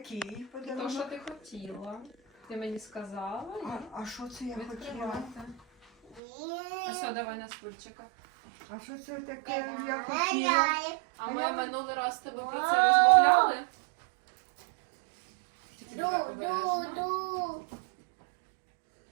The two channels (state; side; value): drops out; left; at 6.2 s